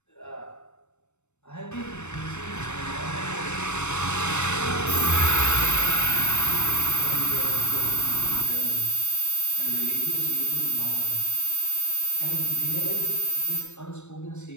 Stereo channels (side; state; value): right; late; 0.82 ms